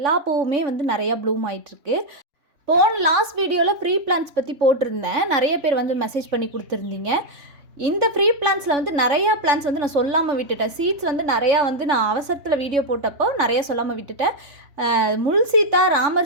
பூவுமே வந்து நிறையா ப்ளூம் ஆகிட்டுருக்கு. லாஸ்ட் வீடியோவில் ஃப்ரீ பிளான்ஸ் பற்றி போட்டிருந்தேன். நிறைய பேர் வந்து மெசேஜ் பண்ணி கொடுத்துருந்தீங்க. இந்த ஃப்ரீ பிளான்ஸில் வந்து நிறையா பிளான்ஸ் வந்து நான் சொல்லாமல் விட்டுட்டேன். சீட்ஸ் வந்து நிறையா வந்து நான் அவசரத்தில் வீடியோ போட்டப்போ நிறையா சொல்லாமல் விட்டுட்டேன். முள் சீத்தா,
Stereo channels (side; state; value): left; late; 3.5 ms